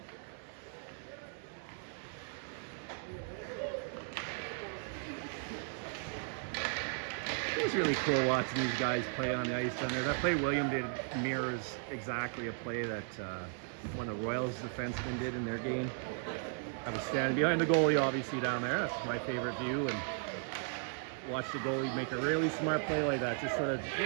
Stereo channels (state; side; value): silent; left; 54 dB below the other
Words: Those really cool watching these guys play on the ice down there. That play William did mirrors exactly a play that one of the Royals defensemen did in their game. I was standing behind the goalie, obviously, down there. That's my favorite view, and watch the goalie make a really smart play like that. Just sort of